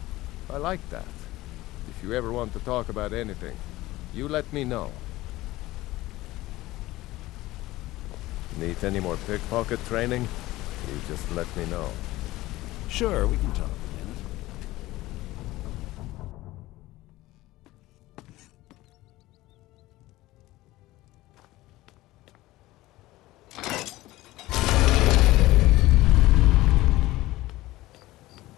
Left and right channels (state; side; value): quieter; right; 17.7 dB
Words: I like that. If you ever want to talk about anything, you let me know. Need any more pickpocket training? You just let me know. Sure, we can talk.